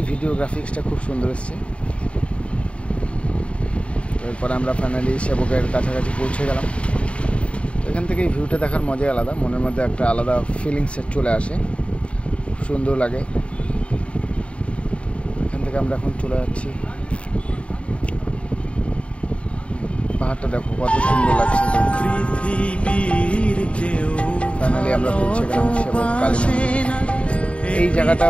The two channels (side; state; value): right; late; 0.061 ms